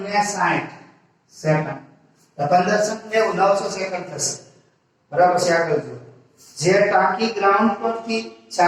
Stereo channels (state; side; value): identical; both; correlation 1.00